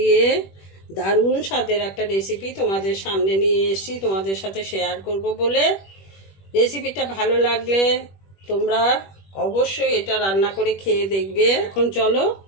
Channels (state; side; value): late; right; 21 ms